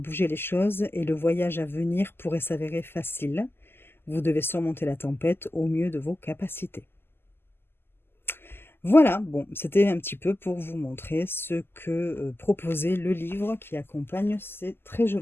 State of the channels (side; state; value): right; late; 0.11 ms